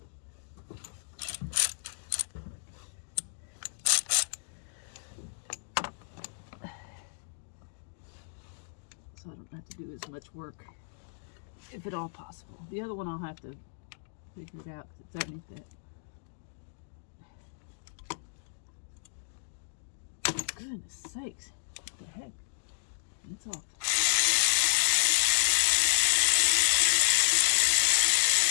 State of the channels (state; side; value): silent; right; digital silence